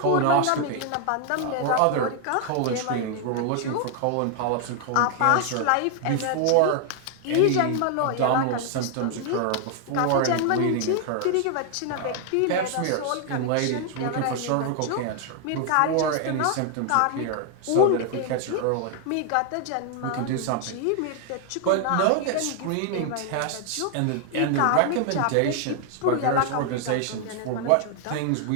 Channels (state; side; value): different; both; correlation 0.00